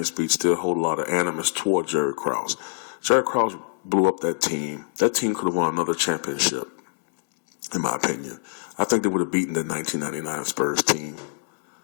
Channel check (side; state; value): right; silent; digital silence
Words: speech, still hold a lot of animus toward Jerry Krause. Jerry Krause blew up that team. That team could have won another championship, in my opinion. I think they would have beaten the 1999 Spurs team.